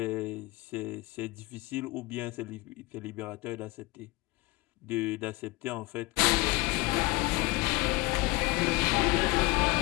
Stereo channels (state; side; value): quieter; right; 22.3 dB